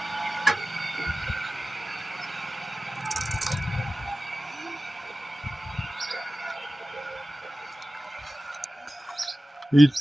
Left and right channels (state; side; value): normal; both; correlation 0.96